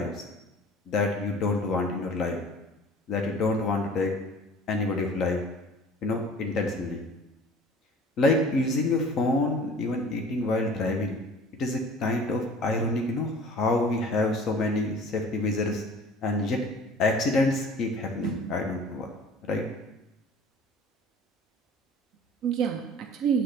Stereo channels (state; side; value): normal; both; correlation 0.46